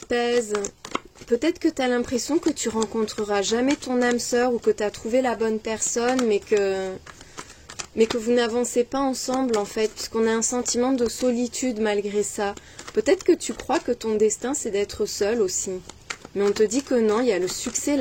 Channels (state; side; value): identical; both; correlation 1.00